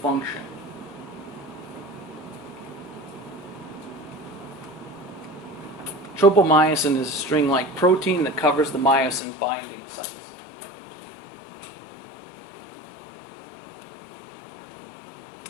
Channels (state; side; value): drops out; right; at 9.2 s